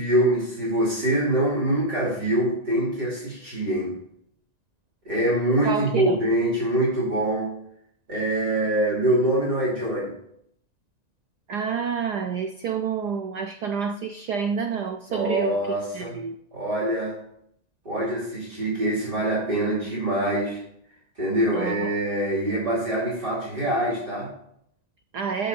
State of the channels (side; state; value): left; late; 1.9 ms